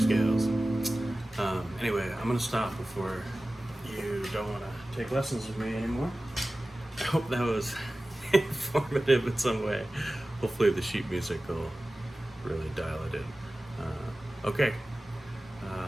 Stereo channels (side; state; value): both; normal; correlation 0.96